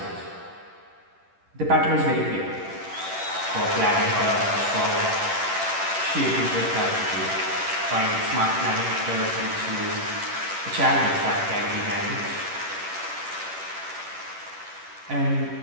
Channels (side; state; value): left; late; 10 ms